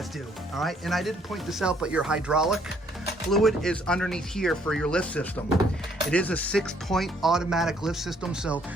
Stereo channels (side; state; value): both; normal; correlation 0.66